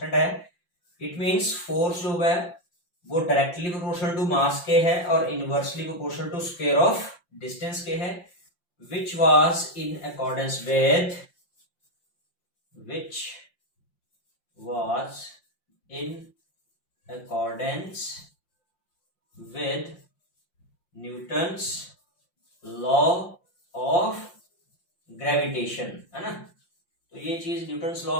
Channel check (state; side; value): late; right; 5.7 ms